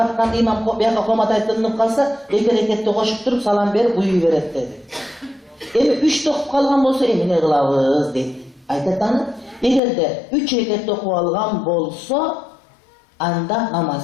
imam buyaka komat aytınıp kalsa, 2 reketli koşup durup salam berip uyuy beret dedi. Emi 3 okup kalgan bolsa emine kılavuz dedi. Aytatanı, eğer de 3 reketli okup algan bolsa, anda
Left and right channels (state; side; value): drops out; right; at 9.8 s